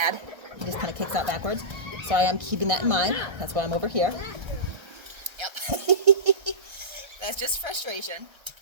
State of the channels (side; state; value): left; late; 1.3 ms